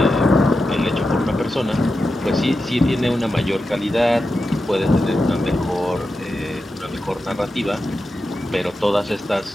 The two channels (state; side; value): normal; both; correlation 0.90